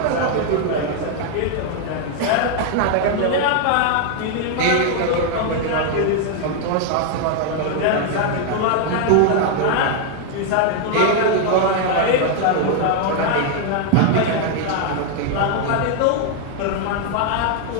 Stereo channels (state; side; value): different; both; correlation 0.00